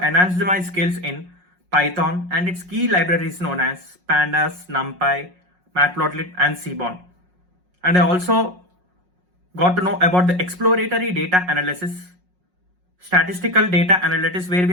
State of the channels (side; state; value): left; late; 5.5 ms